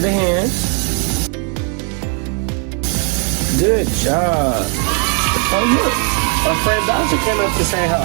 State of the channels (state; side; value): quieter; left; 39.6 dB